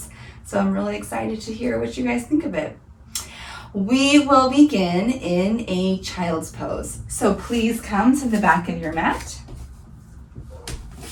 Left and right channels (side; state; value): both; identical; correlation 1.00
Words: So I'm really excited to hear what you guys think of it. We will begin in a child's pose. So please come to the back of your mat.